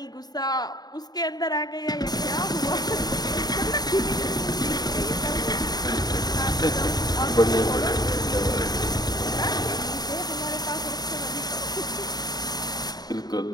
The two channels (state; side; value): late; right; 0.19 ms